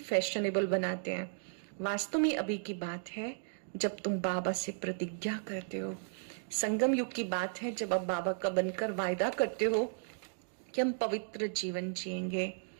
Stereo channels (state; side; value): silent; left; digital silence